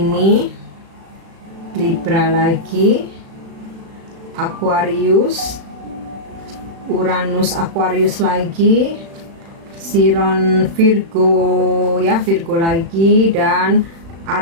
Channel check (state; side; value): late; left; 36 ms